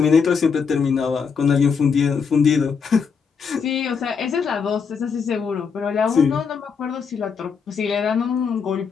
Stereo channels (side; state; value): right; quieter; 6.0 dB